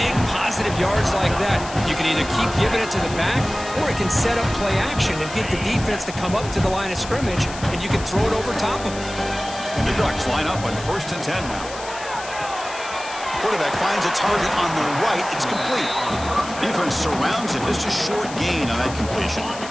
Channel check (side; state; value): left; noise; hiss, 13 dB below the sound